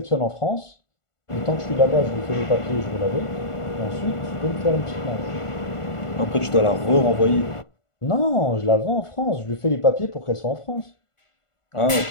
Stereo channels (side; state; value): right; late; 1.5 ms